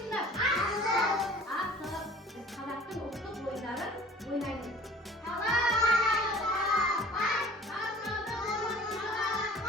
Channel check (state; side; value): normal; both; correlation 0.48